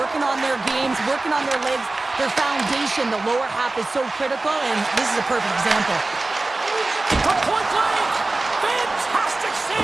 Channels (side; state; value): left; quieter; 3.1 dB